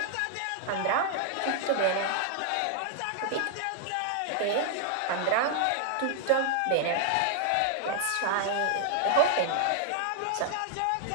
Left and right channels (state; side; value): different; both; correlation 0.00